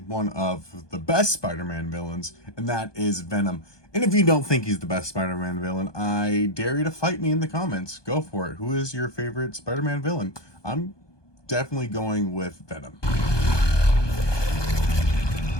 of the best Spider-Man villains, and that is Venom. And if you don't think he's the best Spider-Man villain, I dare you to fight me in the comments. Go for it. Who is your favorite Spider-Man villain? I'm definitely going with Venom.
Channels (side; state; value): right; late; 1.2 ms